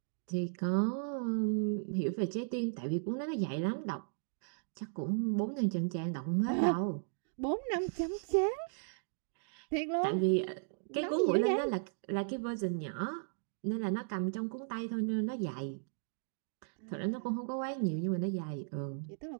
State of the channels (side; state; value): left; silent; digital silence